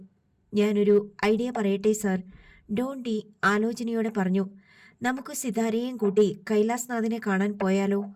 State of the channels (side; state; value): both; identical; correlation 1.00